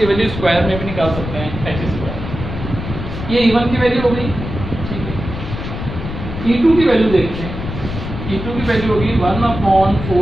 वैल्यू स्क्वायर में भी निकाल सकते हैं, h²। ये E1 की वैल्यू हो गई, ठीक है। E2 की वैल्यू देखते हैं। E2 की वैल्यू होगी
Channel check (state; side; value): noise; left; rumble, 7 dB below the sound